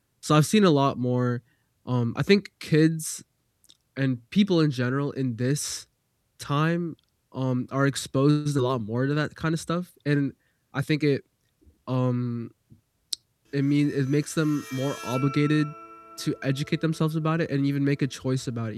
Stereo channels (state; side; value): identical; both; correlation 1.00